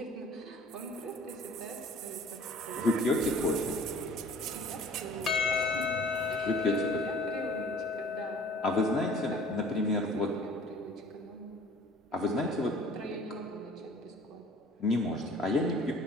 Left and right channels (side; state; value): both; normal; correlation 0.49